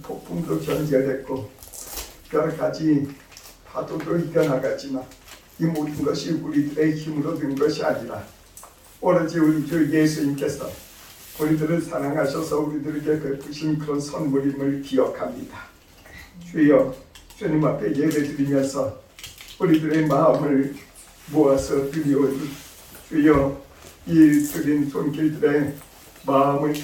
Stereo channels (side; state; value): both; identical; correlation 1.00